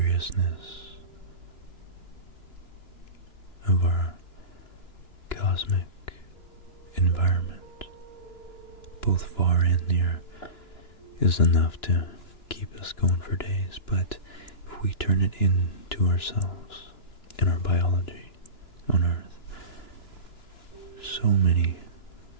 of our cosmic environment, both far and near, is enough to keep us going for days. But if we turn it into ourselves and our biology on Earth, so many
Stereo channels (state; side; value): late; right; 2.9 ms